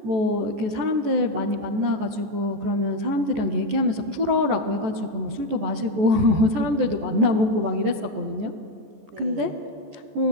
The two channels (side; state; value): left; late; 14 ms